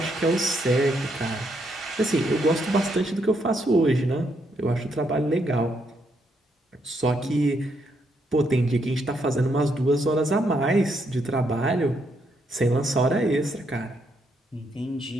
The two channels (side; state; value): both; normal; correlation 0.76